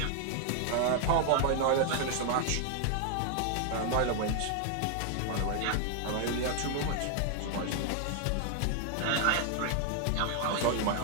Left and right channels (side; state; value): both; different; correlation 0.00